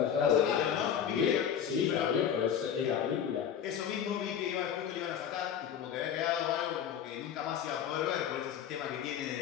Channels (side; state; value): right; quieter; 8.6 dB